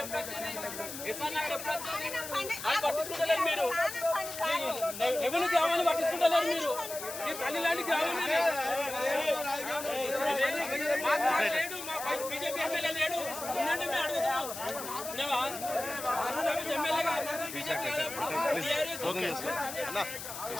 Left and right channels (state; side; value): noise; left; hiss, 9 dB below the sound